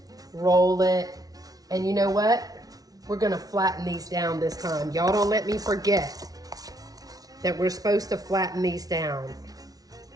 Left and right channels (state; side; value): late; left; 0.18 ms